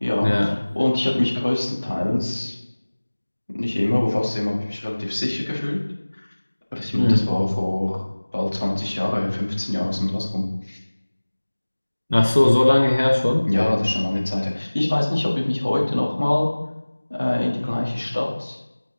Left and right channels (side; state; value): both; inverted; correlation -1.00